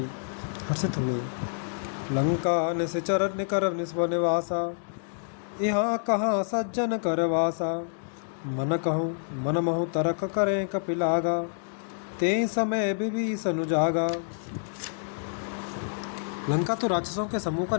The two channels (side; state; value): right; silent; digital silence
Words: हर्षित हुए। लंका निश्चर निकर निस्व निवासा, यहाँ कहाँ सज्जन कर वासा। मन कहूँ मन महु तरक करें कपिलागा, ते समय विभीषण जागा। लंका तो राक्षसों के समूह का